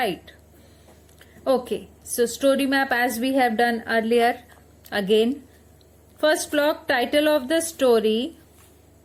Okay, so story map as we have done earlier. Again, first block, title of the story,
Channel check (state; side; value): identical; both; correlation 1.00